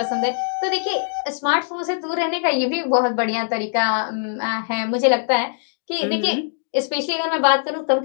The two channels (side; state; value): right; silent; digital silence